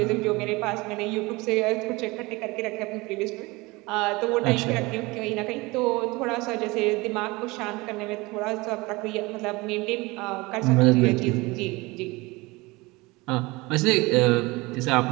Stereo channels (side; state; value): left; quieter; 23.1 dB